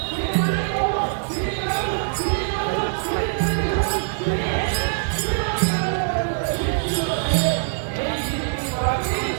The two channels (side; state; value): left; silent; digital silence